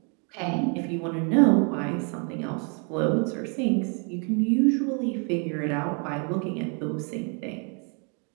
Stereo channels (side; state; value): left; quieter; 36.7 dB